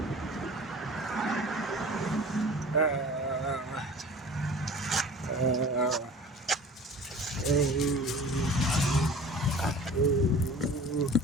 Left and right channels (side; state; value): both; normal; correlation 0.42